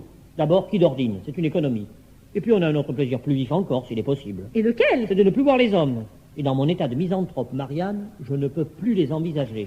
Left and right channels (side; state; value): both; identical; correlation 1.00